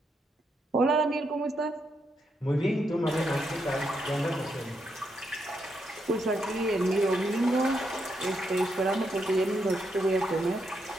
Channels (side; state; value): both; normal; correlation 0.80